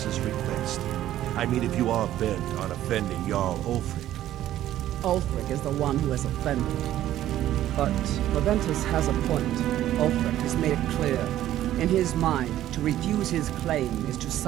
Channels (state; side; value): quieter; left; 13.0 dB